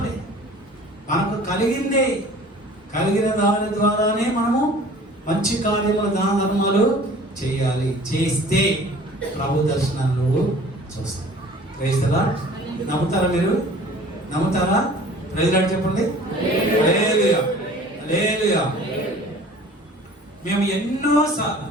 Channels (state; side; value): normal; both; correlation 0.47